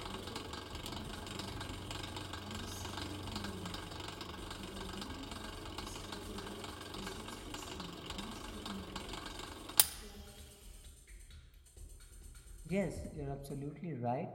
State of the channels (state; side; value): identical; both; correlation 1.00